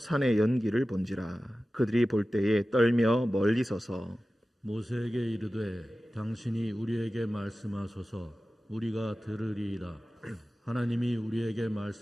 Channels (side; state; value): both; normal; correlation 0.95